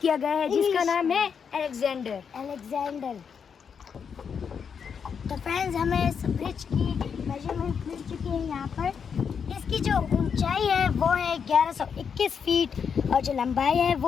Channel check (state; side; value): quieter; right; 6.7 dB